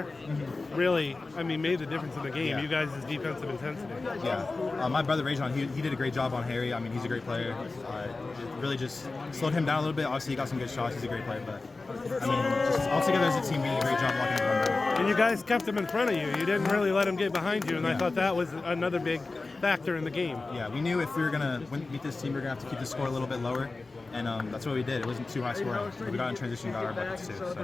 really, I mean, made the difference in the game. Yeah. You guys' defensive intensity. Yeah. My brother, Rajon, he did a great job on Harry. I mean, he's a great player. It really just slowed him down a little bit. Obviously, he got some good shots. He's a great player, but, I mean, just altogether as a team, we did a great job blocking him down. And you guys kept him in front of you. You didn't really let him get behind you, and I thought that was another big factor in the game. Yeah, we knew if we were going to beat this team, we were going to have to keep the score a little bit lower, and that's what we did. It wasn't too high scoring. We got in transition, got our buckets too.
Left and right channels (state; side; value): quieter; right; 3.6 dB